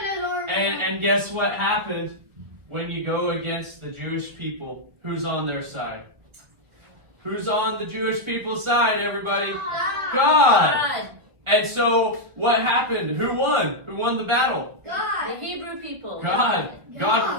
And guess what happened when you go against the Jewish people? Who's on their side? Who's on the Jewish people's side, everybody? God! And so, what happened? Who won? Who won the battle? God. The Hebrew people. God.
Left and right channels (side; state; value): left; late; 1.7 ms